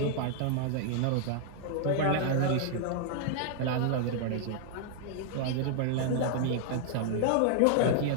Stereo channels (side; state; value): both; different; correlation 0.00